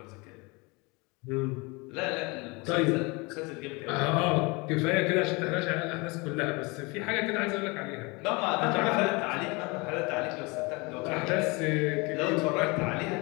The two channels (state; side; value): quieter; right; 27.0 dB